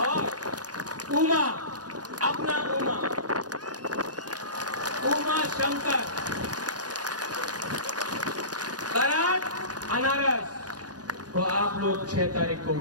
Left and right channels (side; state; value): left; late; 0.69 ms